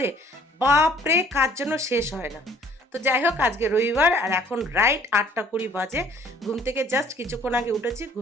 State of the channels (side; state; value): both; normal; correlation 0.57